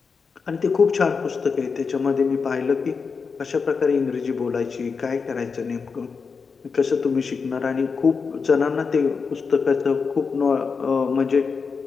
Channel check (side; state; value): right; quieter; 5.2 dB